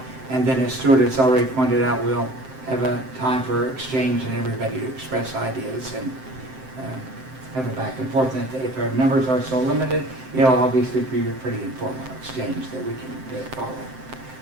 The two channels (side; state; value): left; late; 7.7 ms